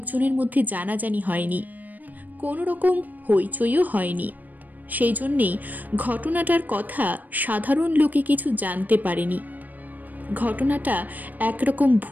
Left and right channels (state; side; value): late; left; 0.083 ms